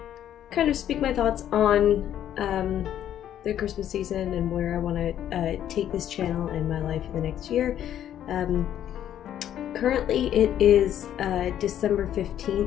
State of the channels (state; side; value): quieter; right; 10.8 dB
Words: kind of speak my thoughts on the Christmas season and where I want to take this channel and my life in the next year. Currently it is December